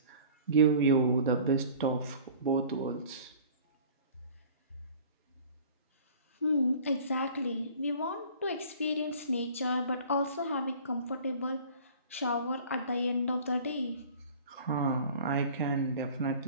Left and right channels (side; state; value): both; inverted; correlation -0.46